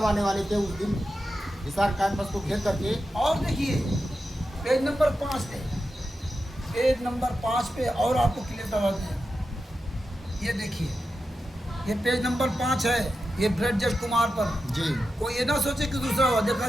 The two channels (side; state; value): both; normal; correlation 0.90